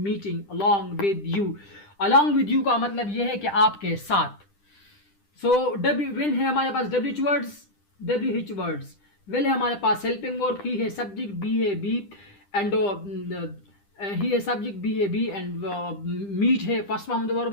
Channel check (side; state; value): right; late; 10 ms